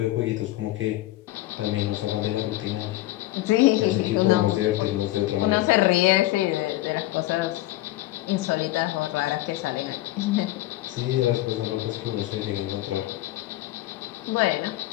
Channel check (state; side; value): quieter; right; 16.6 dB